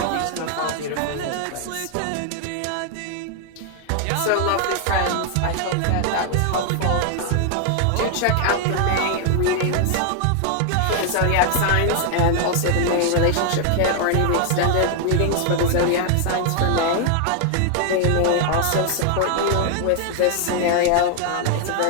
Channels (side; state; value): both; different; correlation 0.00